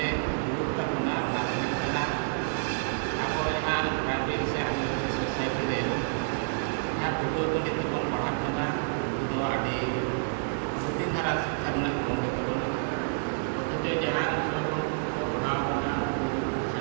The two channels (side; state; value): left; silent; digital silence